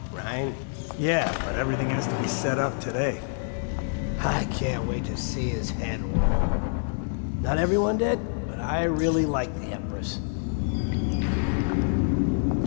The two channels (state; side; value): silent; right; digital silence